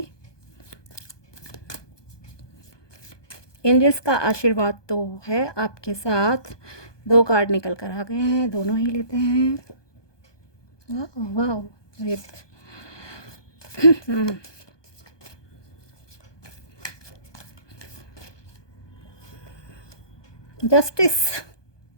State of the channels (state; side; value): late; right; 1.2 ms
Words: एंजल्स का आशीर्वाद तो है आपके साथ। 2 कार्ड निकल कर आ गए हैं, दोनों ही लेते हैं। वाह वाह, ग्रेट। जस्टिस,